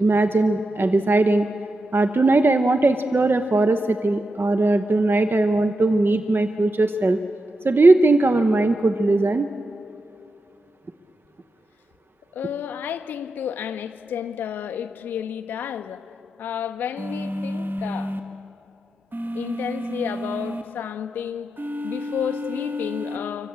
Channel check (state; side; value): normal; both; correlation 0.88